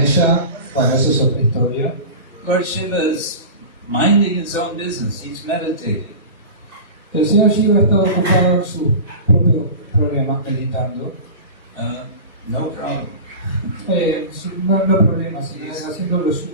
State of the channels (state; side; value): inverted; both; correlation -0.31